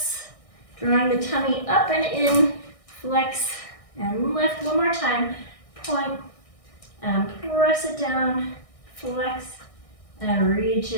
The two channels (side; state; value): right; late; 1.6 ms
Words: drawing the tummy up and in, flex and lift. One more time. Point and press it down, flex and reach